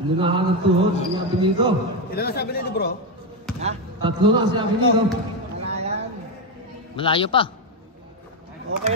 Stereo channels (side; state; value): both; normal; correlation 0.08